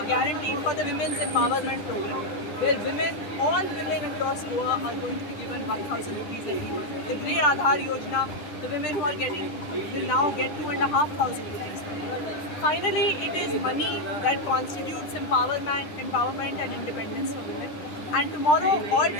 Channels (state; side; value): late; right; 10 ms